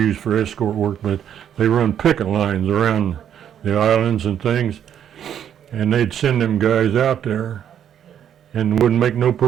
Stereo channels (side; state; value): left; quieter; 9.5 dB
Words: for escort work, but they run picket lines around the islands and things. And they'd send them guys out there and wouldn't make no